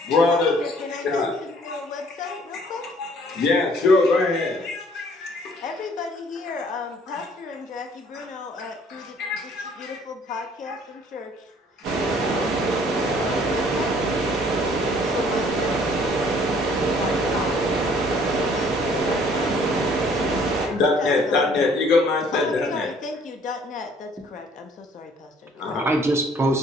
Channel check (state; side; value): normal; both; correlation 0.58